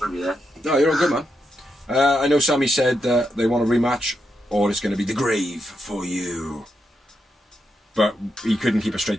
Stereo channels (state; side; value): normal; both; correlation 0.83